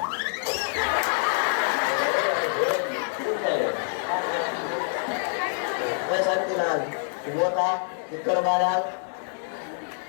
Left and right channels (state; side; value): silent; right; digital silence